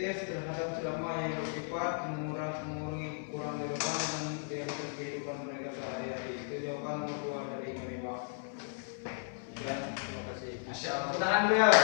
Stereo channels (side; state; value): right; silent; 54 dB below the other